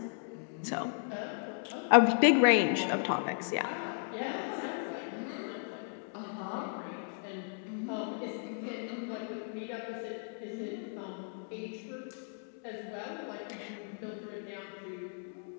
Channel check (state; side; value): silent; right; 54 dB below the other